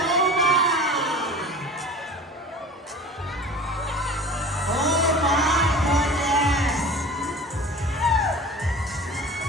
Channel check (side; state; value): both; normal; correlation 0.39